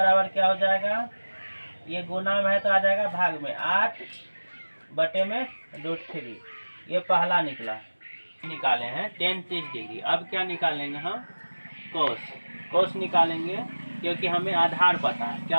क्या हो जाएगा? ये गुना में है तो आ जाएगा भाग में, 8 बटे में √3। ये पहला निकला। निकाले हैं 10 30 डिग्री। अब क्या निकालेंगे हम? कोस निकालेंगे, क्योंकि हमें आधार पता है। क्या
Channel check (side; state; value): both; inverted; correlation -1.00